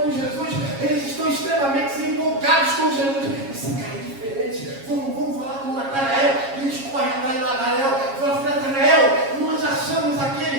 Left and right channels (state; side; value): late; left; 7.3 ms